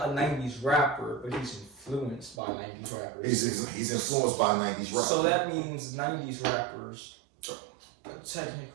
a 90s rapper, but he's influenced by 90s rappers. He's influenced by 90s rap. So that means 90s rappers,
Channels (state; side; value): drops out; left; at 2.4 s